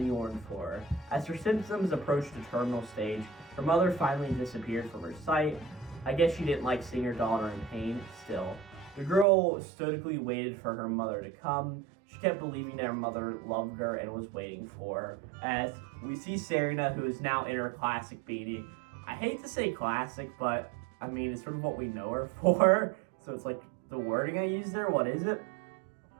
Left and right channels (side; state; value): left; drops out; at 9.2 s